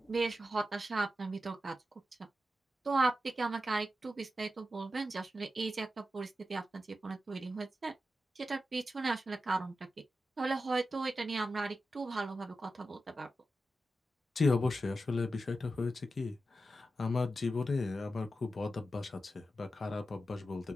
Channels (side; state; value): both; normal; correlation 0.90